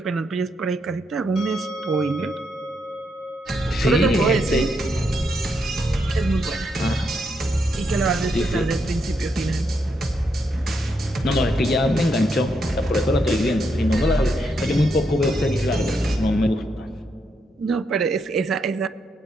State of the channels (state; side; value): normal; both; correlation 0.79